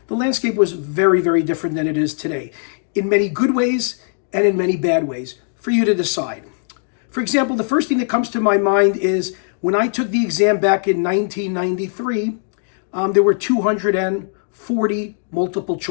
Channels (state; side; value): silent; right; digital silence